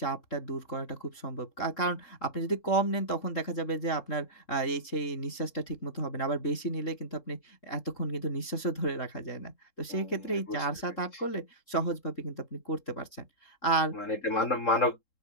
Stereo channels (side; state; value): right; late; 3.7 ms